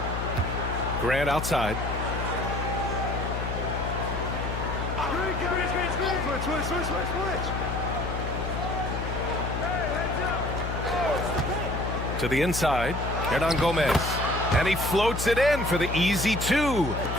Grant outside. To the inside. Hernan Gomez. And he floats it in for the easy two.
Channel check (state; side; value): noise; left; hum, 4 dB below the sound